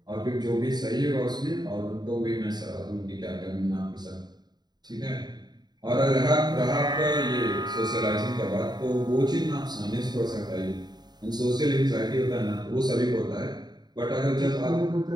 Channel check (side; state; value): left; late; 0.20 ms